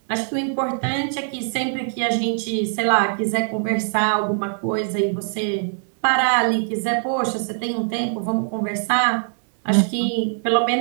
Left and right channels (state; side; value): silent; left; 64 dB below the other